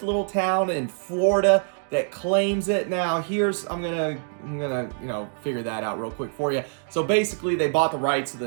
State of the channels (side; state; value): left; silent; digital silence